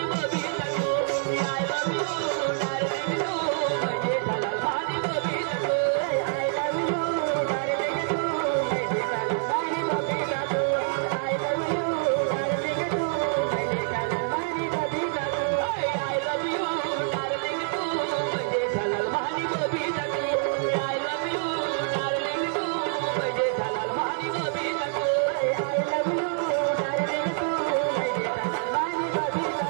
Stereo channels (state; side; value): silent; left; digital silence